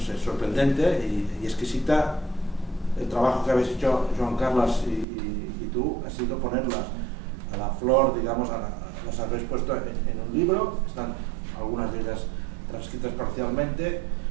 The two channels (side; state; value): left; drops out; at 5.1 s